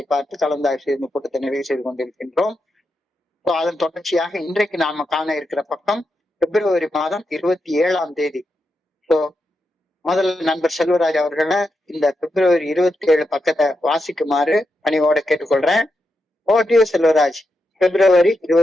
பார்த்து கலந்தாய்வு செய்து கூட்டத்தை நிறைவு செய்து கொண்டிருக்கின்றோம். அதன் தொடர்ச்சியாக இன்றைக்கு நாம காண இருக்கிற பக்கம் பிப்ரவரி மாதம் 27ஆம் தேதி. முதல்ல நண்பர் செல்வராஜ் அவர்களை இந்த பிப்ரவரி 27 பக்கத்தை வாசிக்குமாறு பணிவோட கேட்டுக்கொள்றேன். ஓடியோ செல்வராஜ். பிப்ரவரி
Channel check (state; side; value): normal; both; correlation 0.86